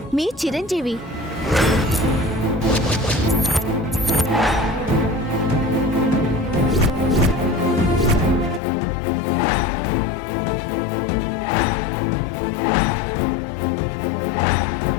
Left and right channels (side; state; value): right; drops out; at 8.6 s